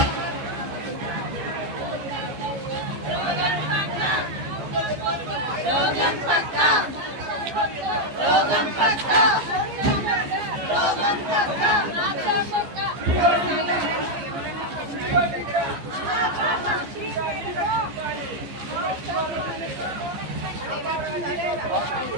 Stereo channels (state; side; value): late; left; 14 ms